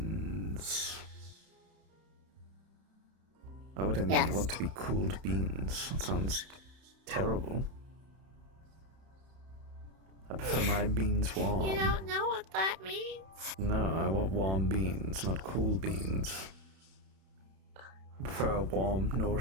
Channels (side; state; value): left; late; 31 ms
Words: Why would anyone Yes. want to be cooled beans? That sounds terrible. I prefer my beans warm. You don't know what that means? No, I want warm beans, not cool beans. I prefer a warm,